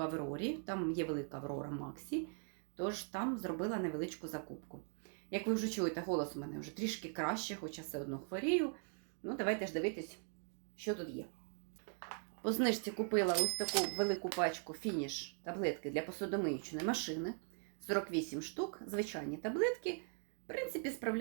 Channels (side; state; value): left; silent; 51 dB below the other